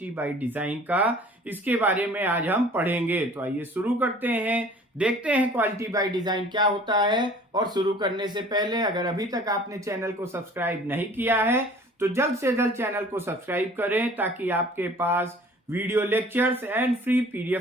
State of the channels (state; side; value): normal; both; correlation 0.49